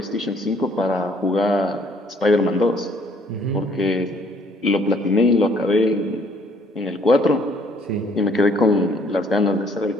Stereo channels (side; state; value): both; normal; correlation 0.62